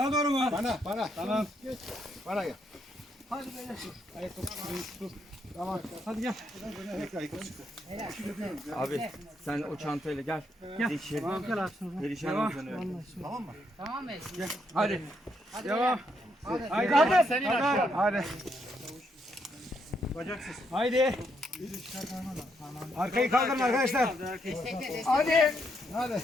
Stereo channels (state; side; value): normal; both; correlation 0.76